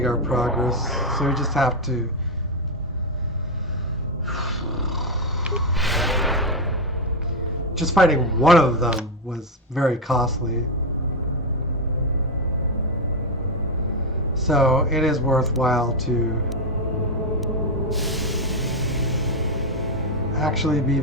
our progress, so we just have to just fighting one of them was very costly, so it is worthwhile to actually be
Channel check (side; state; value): both; normal; correlation 0.05